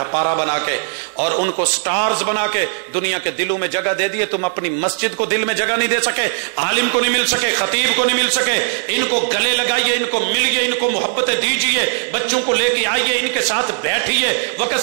بنا کے، اور ان کو سٹارز بنا کے دنیا کے دلوں میں جگہ دے دیے۔ تم اپنی مسجد کو دل میں جگہ نہیں دے سکے، عالم کو نہیں مل سکے، خطیب کو نہیں مل سکے۔ ان کو گلے لگائیے، ان کو ملیے، ان کو محبتیں دیجیے، بچوں کو لے کے آئیے، ان کے ساتھ بیٹھیے، وقت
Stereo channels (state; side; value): silent; left; 61 dB below the other